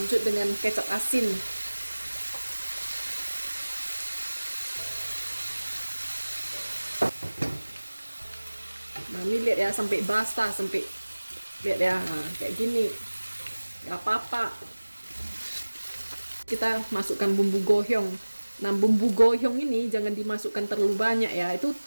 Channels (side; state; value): both; inverted; correlation -1.00